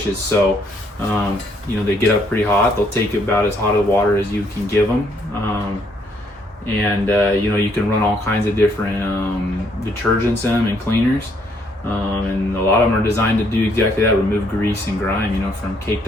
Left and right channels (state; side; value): normal; both; correlation 0.69